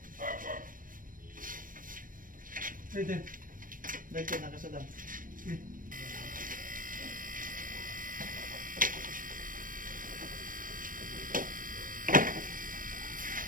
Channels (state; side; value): late; left; 0.40 ms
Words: Pwede. Dito nakasadam.